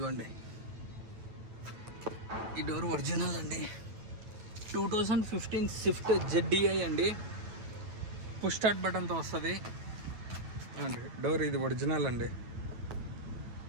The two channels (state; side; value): late; left; 9.2 ms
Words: ఈ డోర్ ఒరిజినల్ అండి. 2015 స్విఫ్ట్ ZDI అండి. పుష్ స్టార్ట్ బటన్తో వస్తుంది అండి. డోర్ ఇది ఒరిజినల్ అండి.